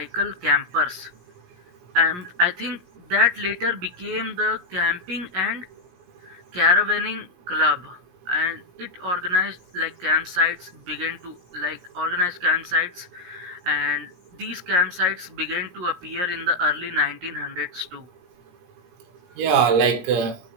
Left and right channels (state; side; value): late; left; 17 ms